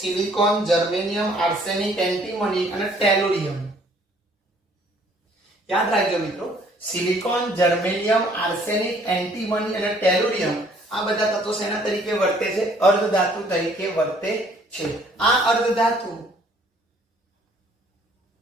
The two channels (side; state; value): both; normal; correlation 0.60